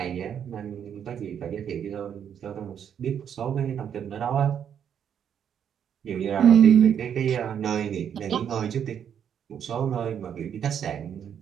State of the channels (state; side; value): quieter; left; 8.6 dB